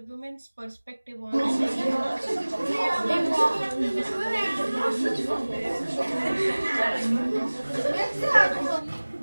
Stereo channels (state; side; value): inverted; both; correlation -1.00